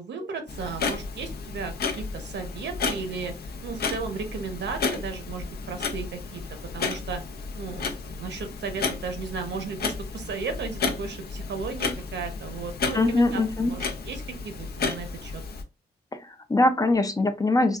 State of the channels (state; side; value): normal; both; correlation 0.57